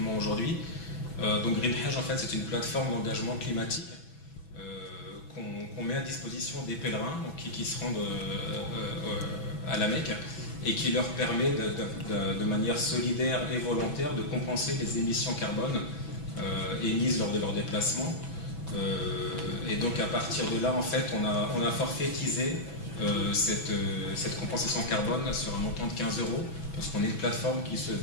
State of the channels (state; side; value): late; right; 6.1 ms